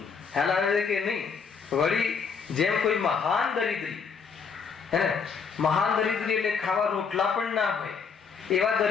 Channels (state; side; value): quieter; right; 5.9 dB